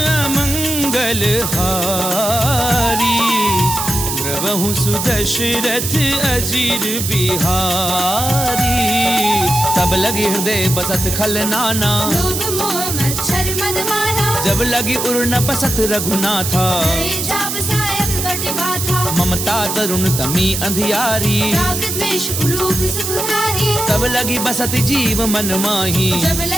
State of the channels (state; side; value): noise; right; hiss, 3 dB below the sound